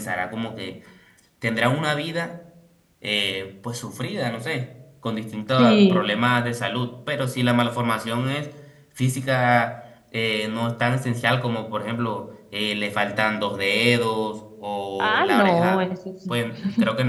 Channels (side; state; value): both; identical; correlation 1.00